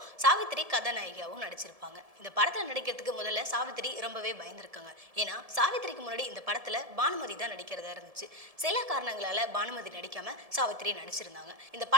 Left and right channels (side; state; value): left; late; 1.7 ms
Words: சாவித்திரி கதாநாயகியாகவும் நடிச்சிருப்பாங்க. இந்த படத்துல நடிக்கிறதுக்கு முதல்ல சாவித்திரி ரொம்பவே பயந்துருக்காங்க. ஏன்னா சாவித்திரிக்கு முன்னாடி இந்த படத்துல பானுமதி தான் நடிக்கிறதா இருந்துச்சு. சில காரணங்களால பானுமதி நடிக்காம சாவித்திரி நடிச்சிருந்தாங்க. இந்த